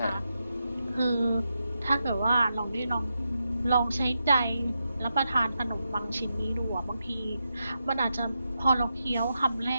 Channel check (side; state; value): both; inverted; correlation -0.86